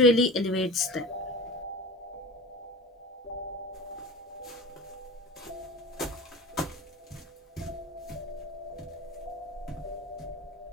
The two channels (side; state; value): both; normal; correlation 0.34